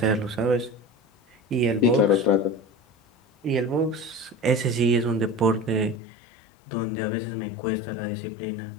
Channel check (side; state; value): right; drops out; at 6.0 s